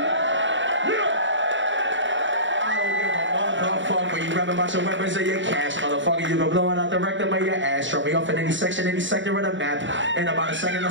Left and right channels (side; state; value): left; late; 0.55 ms